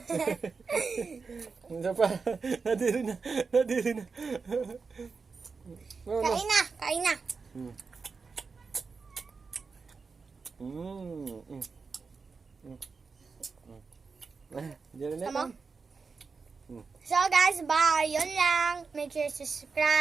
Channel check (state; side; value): quieter; left; 4.8 dB